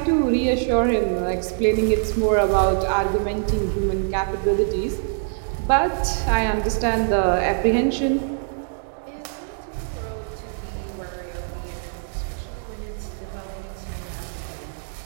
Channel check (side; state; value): left; silent; digital silence